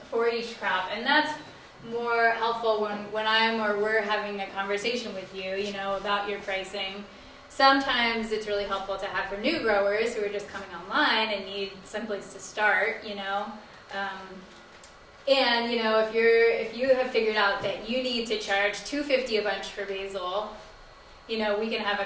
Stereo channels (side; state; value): both; identical; correlation 1.00